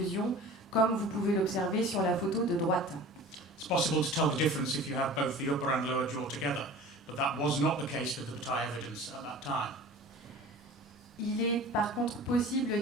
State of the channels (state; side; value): normal; both; correlation 0.40